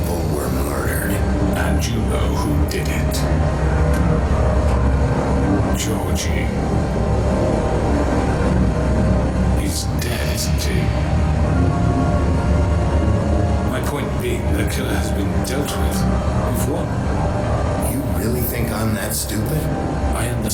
were murdered. And you know who did it. Georgie. He's dead, isn't he? My point being, the killer has been dealt with. We've won. You really think I'm that stupid? I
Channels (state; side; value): identical; both; correlation 1.00